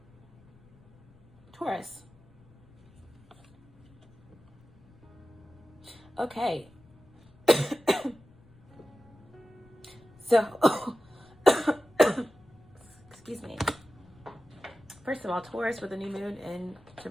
Taurus. Okay. So, excuse me. First of all, Taurus with a new moon in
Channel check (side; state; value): left; noise; rumble, 27 dB below the sound